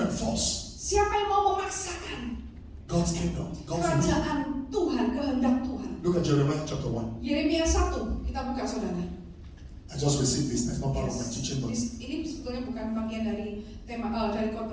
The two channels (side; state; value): both; identical; correlation 1.00